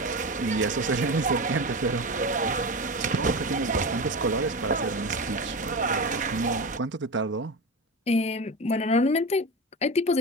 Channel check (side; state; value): both; normal; correlation 0.25